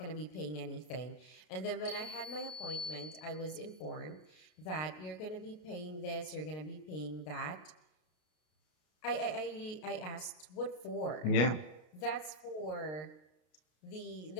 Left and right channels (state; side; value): late; right; 33 ms